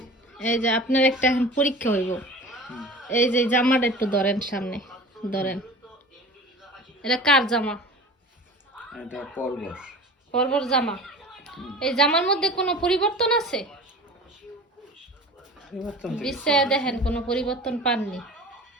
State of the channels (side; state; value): both; normal; correlation 0.38